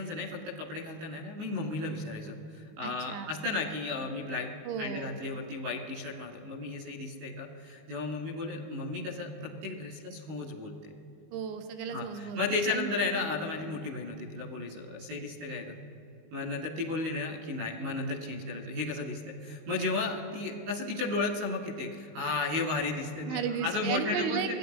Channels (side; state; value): left; late; 19 ms